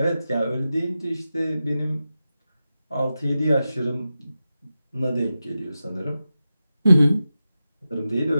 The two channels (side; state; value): both; inverted; correlation -0.92